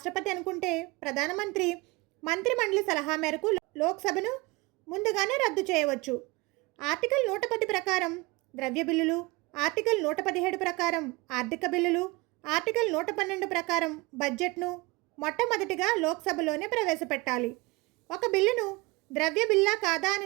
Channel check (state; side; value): quieter; left; 23.7 dB